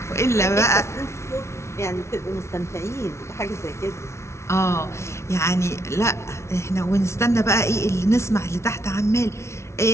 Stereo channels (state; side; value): late; right; 0.13 ms